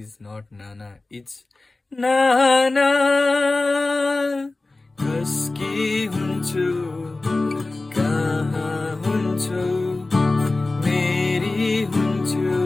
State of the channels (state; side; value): quieter; right; 3.2 dB